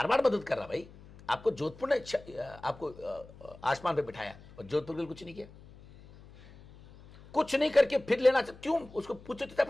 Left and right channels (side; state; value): left; noise; hum, 21 dB below the sound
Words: मदद कर रहा भाई, आपको जोधपुर ने आपको आसमान पे बिठाया और जोधपुर के लिए कुछ नहीं किया। कुछ नहीं करके फिर लेना चाहते, क्यों? उसको पूछो तो